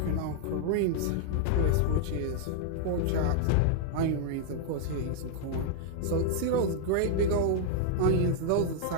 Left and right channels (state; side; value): different; both; correlation 0.00